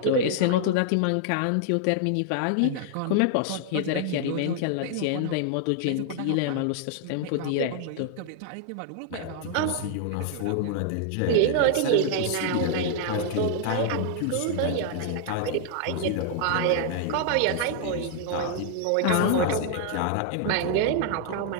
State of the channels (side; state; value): both; different; correlation 0.00